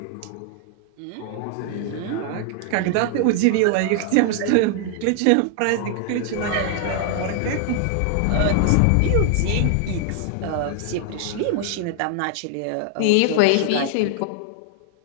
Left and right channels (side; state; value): both; different; correlation 0.00